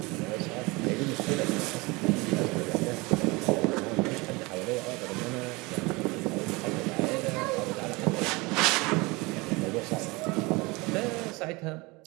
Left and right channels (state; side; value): quieter; left; 24.6 dB